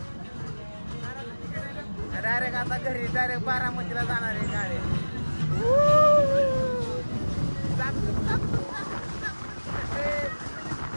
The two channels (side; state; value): both; inverted; correlation -1.00